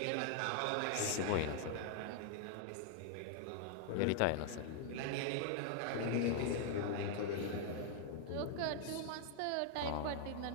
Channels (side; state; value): both; different; correlation 0.00